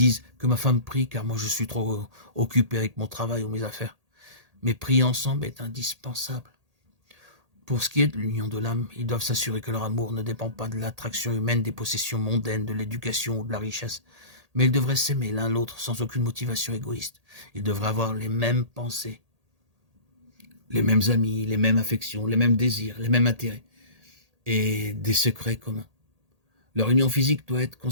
que ma femme prie car moi je suis trop occupé avec mon travail ou mes affaires. Mais prier ensemble est indispensable. Pour ce qui est de l'union de l'âme, ils doivent s'assurer que leur amour ne dépend pas de l'attraction humaine, des possessions mondaines, de l'éducation ou de la richesse. Mais ils devraient s'aimer l'un l'autre sans aucune motivation égoïste. Ils devraient avoir les mêmes pensées, les mêmes amis, les mêmes affections, les mêmes désirs, les mêmes intérêts et des secrets communs. Leur union physique doit être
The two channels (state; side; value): late; left; 1.8 ms